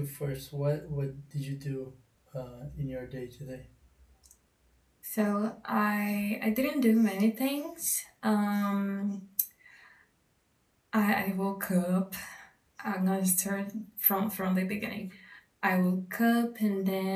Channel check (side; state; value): both; identical; correlation 1.00